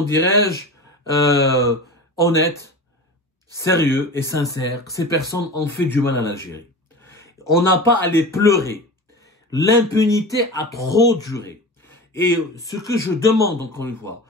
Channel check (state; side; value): normal; both; correlation 0.31